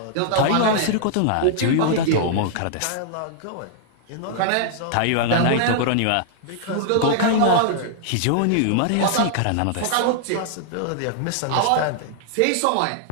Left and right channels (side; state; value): both; different; correlation -0.01